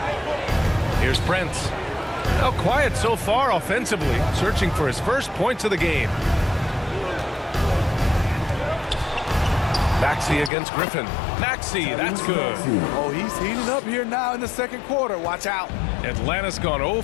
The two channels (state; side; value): drops out; right; at 10.5 s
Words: Here's Prince. Now quiet so far offensively, searching for his first points of the game. Maxey against Griffin. Maxey, that's good. Oh, he's heating up here now in the second quarter. Watch out. Atlanta's gone 0